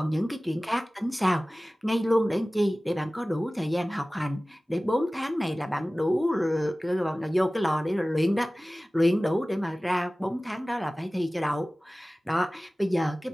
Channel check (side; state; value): both; normal; correlation 0.98